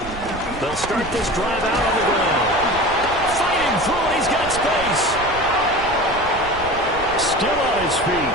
They'll start this drive out on the ground. Fighting through it, he's got space. Still on his feet.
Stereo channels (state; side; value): noise; right; rumble, 13 dB below the sound